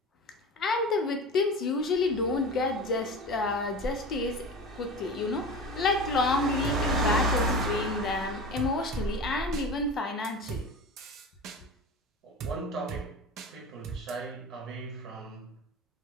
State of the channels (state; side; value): normal; both; correlation 0.31